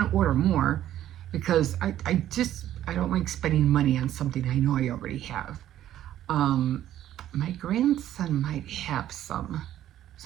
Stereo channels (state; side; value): quieter; left; 12.2 dB